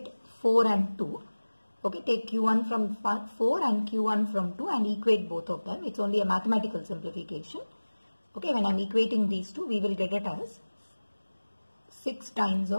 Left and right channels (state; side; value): inverted; both; correlation -1.00